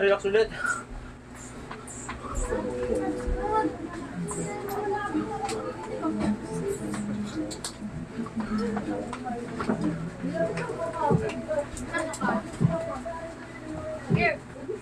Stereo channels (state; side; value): identical; both; correlation 1.00